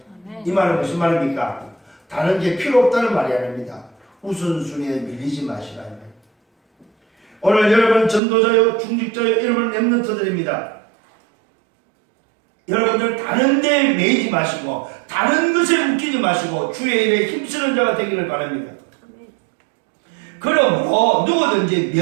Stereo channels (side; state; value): left; drops out; at 8.2 s